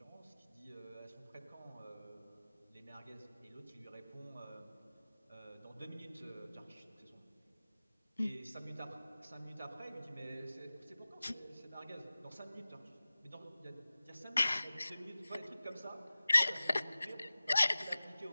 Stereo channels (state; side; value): inverted; both; correlation -0.97